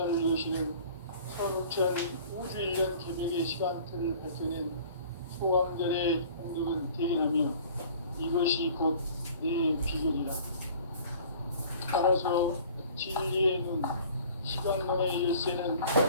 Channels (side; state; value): both; inverted; correlation -0.48